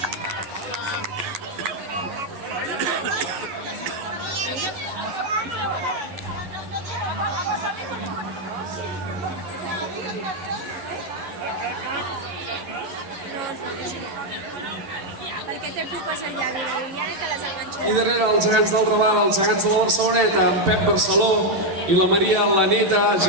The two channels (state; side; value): late; left; 11 ms